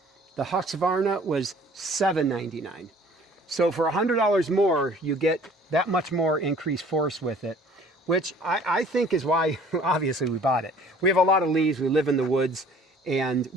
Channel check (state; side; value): normal; both; correlation 0.52